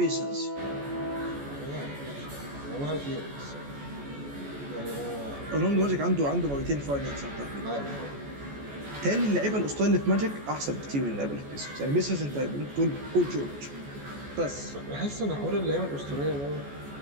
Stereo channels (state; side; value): late; left; 14 ms